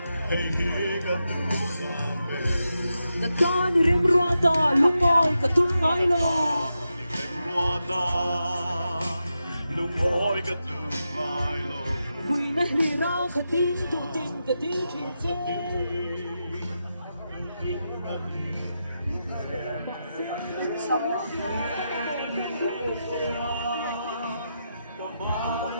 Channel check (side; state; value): both; inverted; correlation -0.88